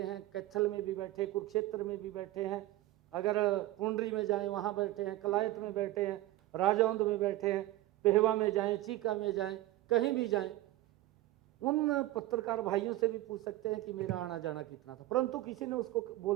हैं, कैथल में भी बैठे, कुरुक्षेत्र में भी बैठे हैं, अगर पुंडरी में जाएं वहाँ बैठे हैं, कलायत में बैठे हैं, राजौंद में बैठे हैं, पेहवा में जाएं, चीका में जाएं, कहीं भी जाएं। उन पत्रकार भाइयों से भी पूछ सकते हैं कि मेरा आना जाना कितना था, परंतु किसी ने उसको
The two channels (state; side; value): quieter; left; 16.6 dB